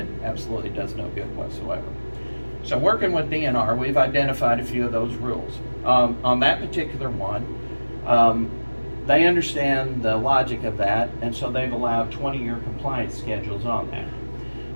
absolutely does no good whatsoever. So working with DNR, we've identified a few of those rules. On that particular one, they understand the logic of that, and so they've allowed 20-year compliance schedules on that.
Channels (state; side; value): inverted; both; correlation -1.00